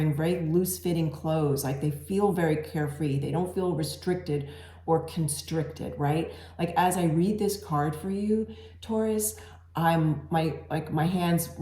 very loose-fitting clothes. Like they feel very carefree. They don't feel restricted or constricted, right? Like as I read this card for you, Taurus, my hands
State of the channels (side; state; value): both; identical; correlation 1.00